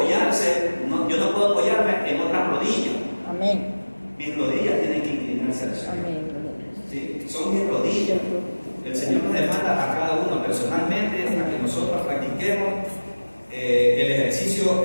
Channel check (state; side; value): inverted; both; correlation -1.00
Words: yo no puedo apoyarme en otras rodillas. Amén. Mis rodillas tienen que inclinarse al Señor. Amén. Sí, son mis rodillas. El Señor nos demanda a cada uno personalmente para que nosotros practiquemos el ejercicio